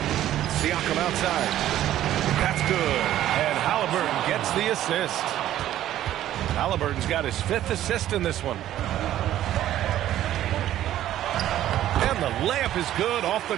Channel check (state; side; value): quieter; left; 12.7 dB